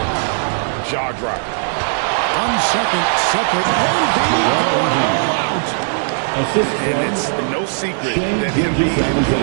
jaw-dropping. 1 second separate. Embiid going all out. And it's no secret that Embiid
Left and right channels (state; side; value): silent; left; 68 dB below the other